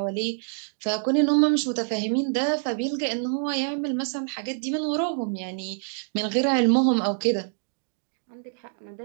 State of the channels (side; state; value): left; silent; digital silence